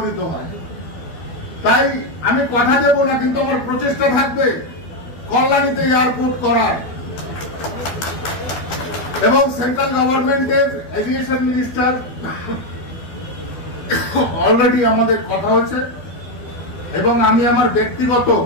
হয়। তাই আমি কথা দেব না, কিন্তু আমার প্রচেষ্টা থাকবে কল্যাণীতে এয়ারপোর্ট করার। এবং সেন্ট্রাল গভর্নমেন্টের এভিয়েশন মিনিস্টার অলরেডি আমাদের কথা হয়েছে এবং আমি আমার ব্যক্তিগত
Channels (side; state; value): right; late; 12 ms